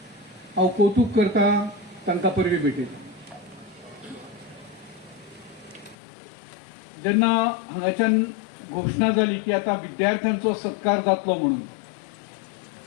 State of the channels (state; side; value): drops out; right; at 6.0 s